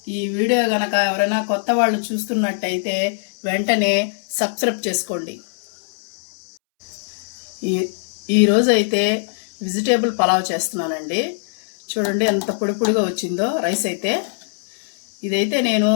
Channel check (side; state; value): right; silent; 65 dB below the other